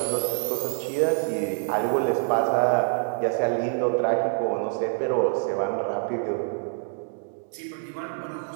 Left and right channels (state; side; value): silent; left; digital silence